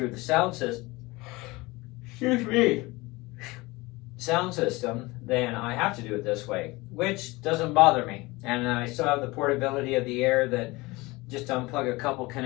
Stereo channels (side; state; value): right; quieter; 22.4 dB